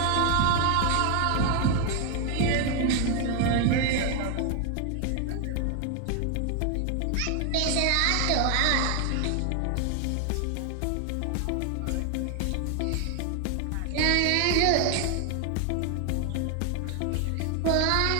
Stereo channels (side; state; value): both; different; correlation 0.01